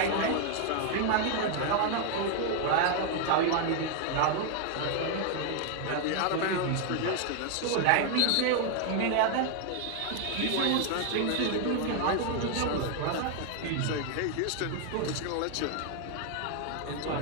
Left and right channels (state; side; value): different; both; correlation 0.00